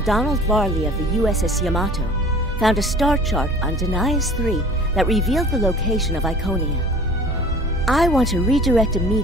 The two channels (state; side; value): normal; both; correlation 0.46